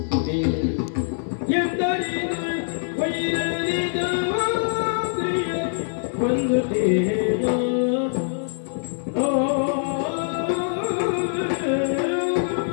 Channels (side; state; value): right; silent; digital silence